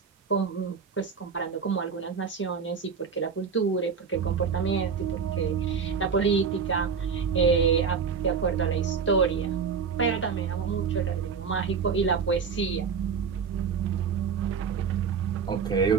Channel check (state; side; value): quieter; left; 6.1 dB